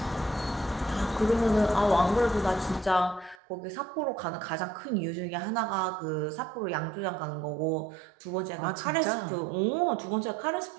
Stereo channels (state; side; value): drops out; left; at 3.4 s